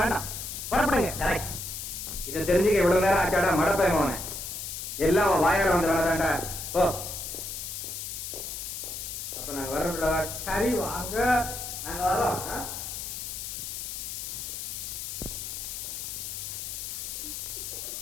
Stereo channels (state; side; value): noise; left; hiss, 6 dB below the sound